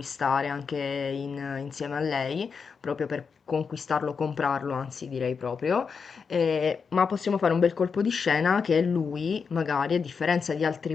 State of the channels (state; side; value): quieter; right; 5.7 dB